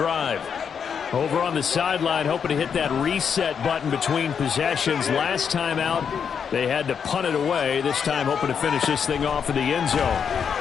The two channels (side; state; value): right; quieter; 7.0 dB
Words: Over on the sideline, hoping to hit that reset button between possessions. Last time out, they had to punt it away. This time, hoping to finish this thing off in the end zone.